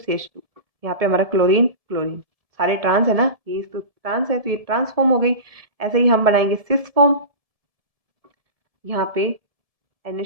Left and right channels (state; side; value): late; left; 1.7 ms